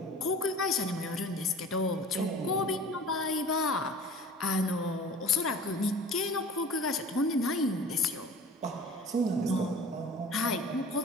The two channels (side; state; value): both; normal; correlation 0.42